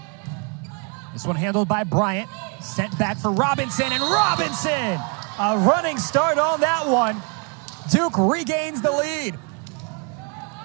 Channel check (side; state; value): left; quieter; 34.2 dB